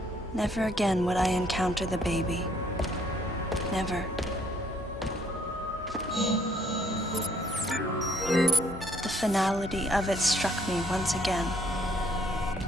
Never again would I encounter the baby. Never. The finality of it struck me once again.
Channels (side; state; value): both; normal; correlation 0.66